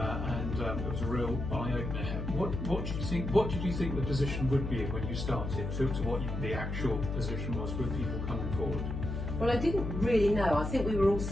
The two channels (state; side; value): noise; left; hum, 4 dB below the sound